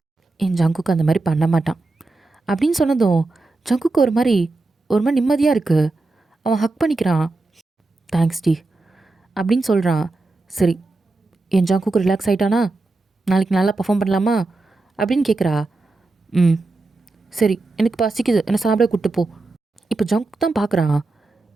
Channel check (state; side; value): quieter; left; 3.3 dB